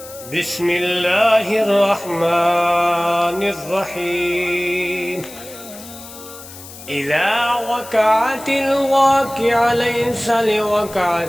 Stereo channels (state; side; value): noise; left; hiss, 16 dB below the sound